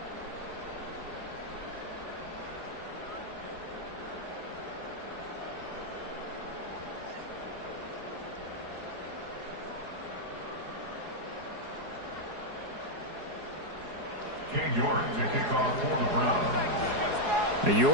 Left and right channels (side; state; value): left; late; 4.8 ms